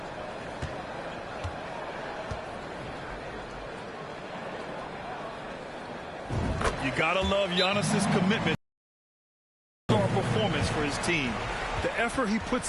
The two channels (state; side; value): identical; both; correlation 1.00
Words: You gotta love Giannis's commitment to performance for his team. The effort he